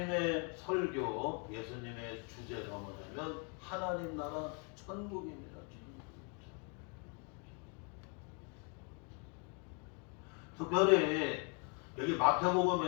설교, 예수님의 주제가 뭐냐면 하나님 나라 천국입니다. 특별히 여기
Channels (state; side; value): quieter; right; 36.2 dB